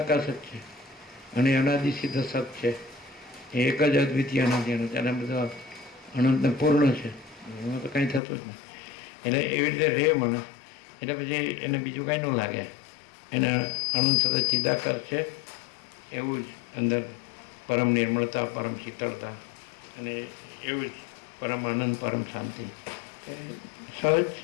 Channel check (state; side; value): drops out; right; at 8.2 s